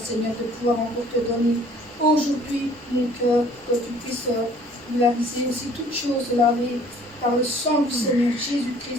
Seigneur, de pouvoir encore te donner aujourd'hui mon cœur, que tu puisses laver aussi toutes choses lavées par le sang du Seigneur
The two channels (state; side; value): normal; both; correlation 0.55